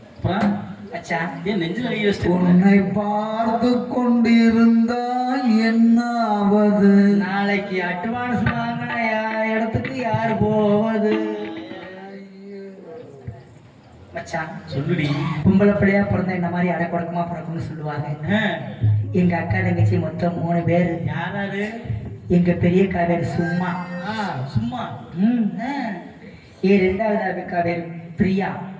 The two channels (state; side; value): identical; both; correlation 1.00